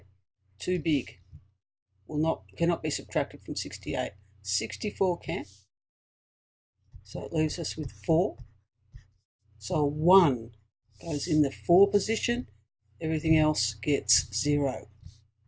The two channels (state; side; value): identical; both; correlation 1.00